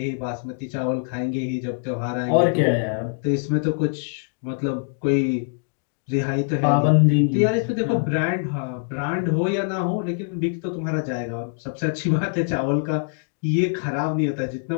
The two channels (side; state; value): right; silent; digital silence